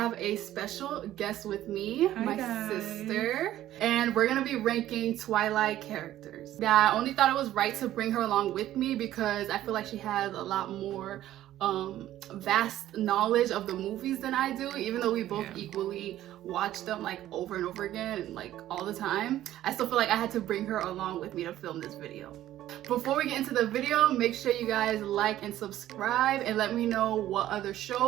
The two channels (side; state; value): left; quieter; 13.3 dB